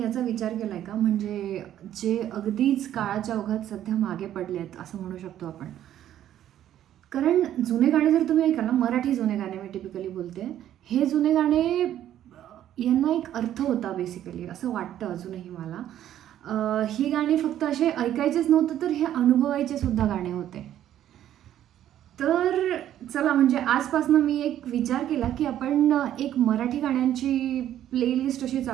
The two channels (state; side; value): quieter; left; 11.5 dB